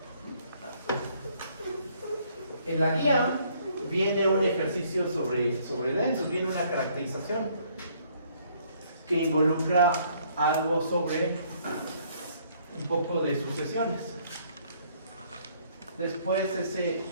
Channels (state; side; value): inverted; both; correlation -0.65